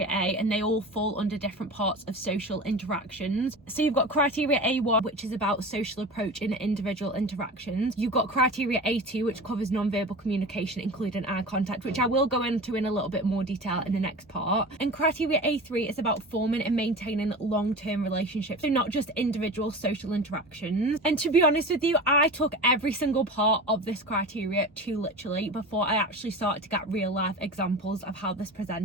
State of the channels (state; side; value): normal; both; correlation 0.32